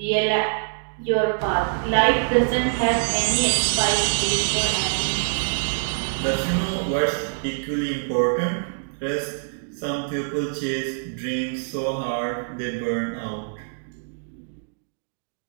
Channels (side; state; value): left; silent; digital silence